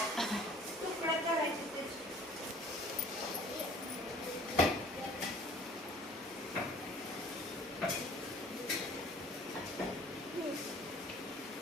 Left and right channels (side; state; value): both; normal; correlation 0.51